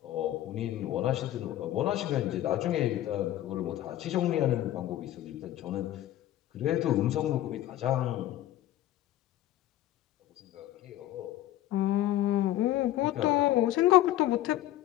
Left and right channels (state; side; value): quieter; right; 13.8 dB